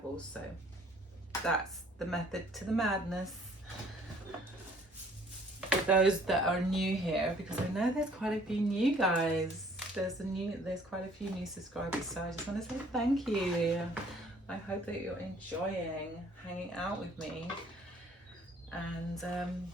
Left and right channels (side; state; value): both; normal; correlation 0.58